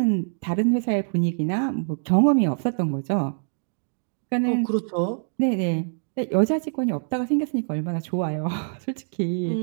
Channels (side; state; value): left; silent; digital silence